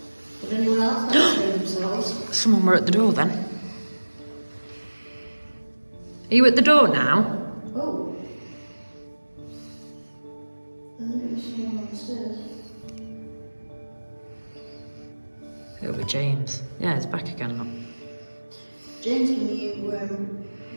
Would anyone else like to show themselves? Someone were at the door then. Are you at the door now? Oh. I think there's someone on the stairs. Over James. Yeah, he's back again. Look. James, can you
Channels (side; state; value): both; inverted; correlation -1.00